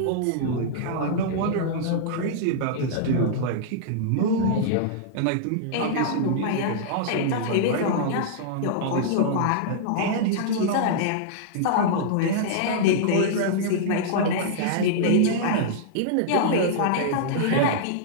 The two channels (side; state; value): both; different; correlation -0.02